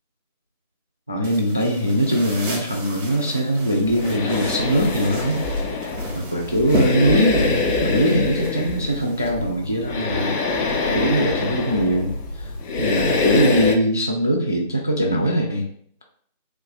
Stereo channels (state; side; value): inverted; both; correlation -0.54